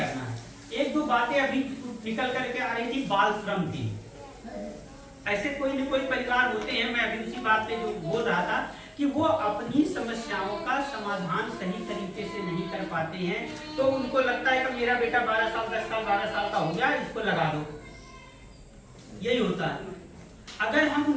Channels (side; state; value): both; identical; correlation 1.00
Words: है। एक दो बातें अभी निकल करके आ रही थी, बाल श्रम की। ऐसे कोई न कोई परिवार होते हैं, मैं अभी उसी बात पे जो बोल रहा था कि वो अपनी समस्याओं का समाधान सही तरीके से नहीं कर पाते हैं, तो उनको लगता है कि मेरा बेटा 12 साल 10 साल 12 साल का हो गया, इसको लगा दो, यही होता है। अगर हम